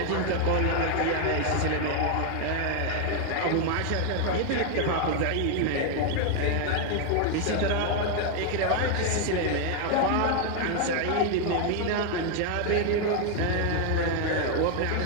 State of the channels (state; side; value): different; both; correlation 0.00